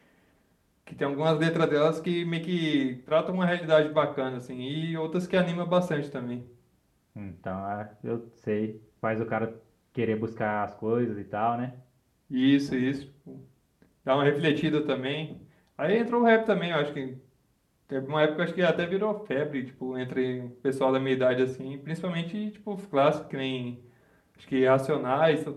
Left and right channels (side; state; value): both; identical; correlation 1.00